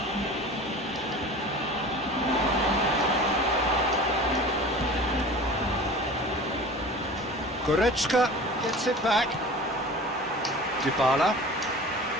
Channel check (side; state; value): both; normal; correlation 0.39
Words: Goretzka gets it back. Dybala.